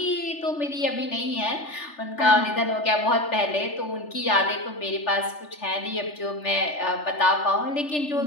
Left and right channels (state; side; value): late; right; 3.4 ms